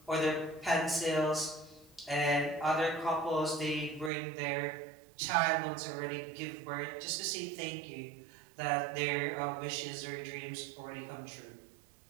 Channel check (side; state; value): left; drops out; at 4.1 s